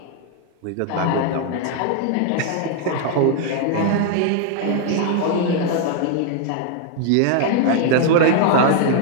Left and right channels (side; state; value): both; different; correlation 0.00